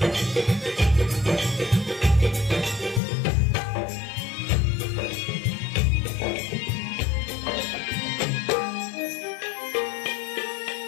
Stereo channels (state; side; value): drops out; right; at 3.0 s